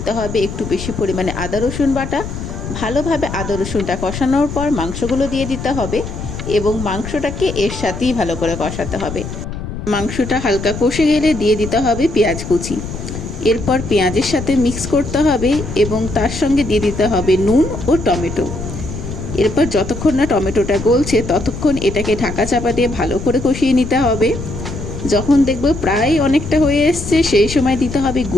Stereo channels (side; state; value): left; noise; rumble, 8 dB below the sound